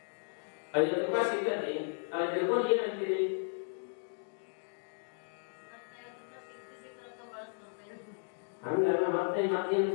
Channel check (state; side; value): silent; right; digital silence